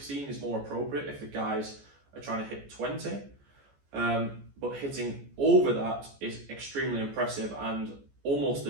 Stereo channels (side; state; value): left; late; 14 ms